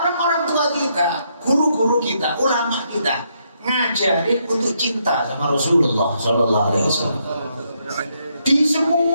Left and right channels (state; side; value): inverted; both; correlation -0.76